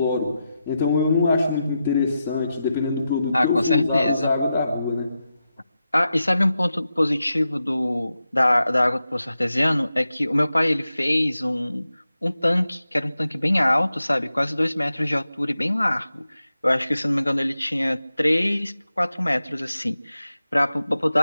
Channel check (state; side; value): inverted; both; correlation -0.90